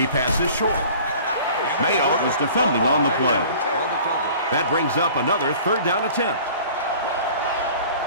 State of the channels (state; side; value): inverted; both; correlation -0.46